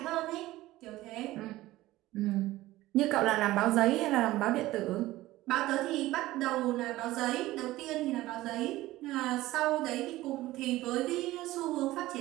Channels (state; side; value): quieter; left; 17.0 dB